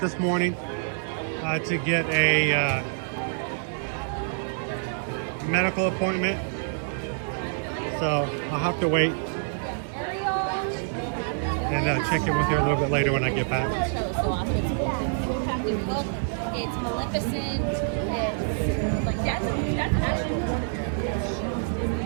this morning to get a medical appointment. So I'll have to wait and check in with her a little bit later when I get back. It's Maleficent. It's like that's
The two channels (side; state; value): left; silent; digital silence